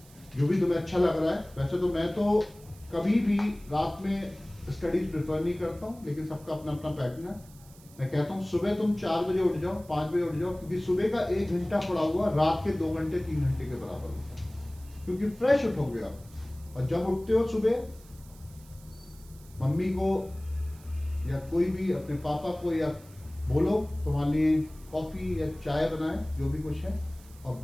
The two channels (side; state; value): right; noise; hiss, 24 dB below the sound